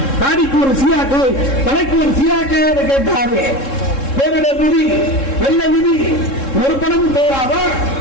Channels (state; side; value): late; right; 3.7 ms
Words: தாடிக்கு ஒரு சியாக்கை, தலைக்கு ஒரு சியாக்கை என்று கேட்டாரு. பேரிடர் நிதி, வெள்ள நிதி ஒரு பணமும் தேவையாதா?